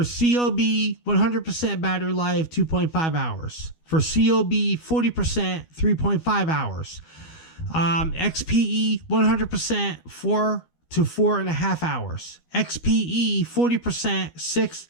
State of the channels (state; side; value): late; right; 12 ms